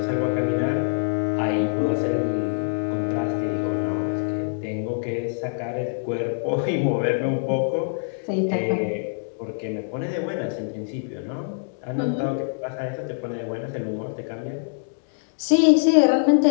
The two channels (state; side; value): silent; right; 62 dB below the other